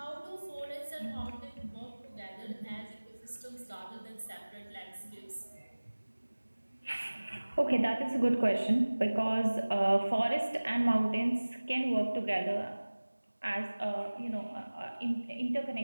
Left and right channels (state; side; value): inverted; both; correlation -1.00